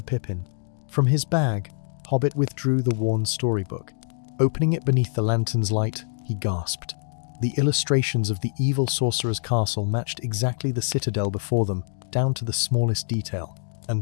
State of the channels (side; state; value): right; silent; digital silence